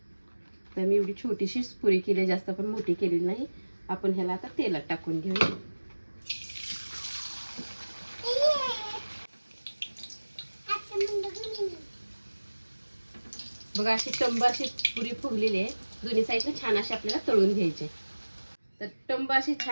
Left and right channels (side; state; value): both; inverted; correlation -1.00